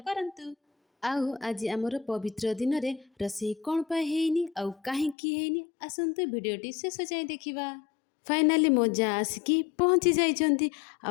आउ आज आमर पवित्र दिन में रोषे कौन पाई आउ कहीं आसतु भिडटी शेष जाए देखा। फाइनाली मो जा आसिकी पहुँची जाइछन्ती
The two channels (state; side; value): drops out; right; at 5.2 s